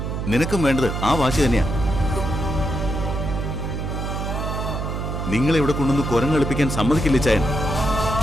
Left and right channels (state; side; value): noise; right; hum, 3 dB below the sound